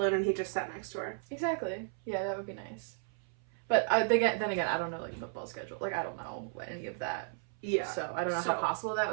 and he just sat next to her. Exactly. Yeah, that would be nice. But then again, I don't know like football schedule. Like I don't know any of that. Yeah. So I don't know how possible that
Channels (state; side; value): silent; left; 55 dB below the other